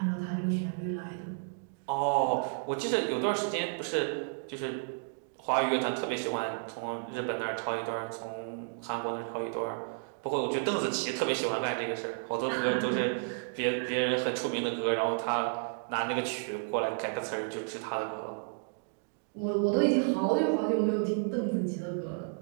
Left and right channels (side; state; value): left; silent; digital silence